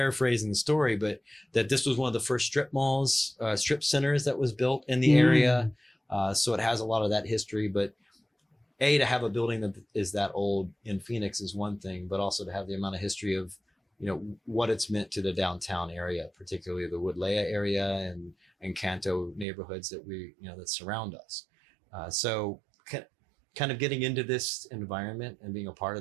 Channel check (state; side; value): drops out; left; at 19.5 s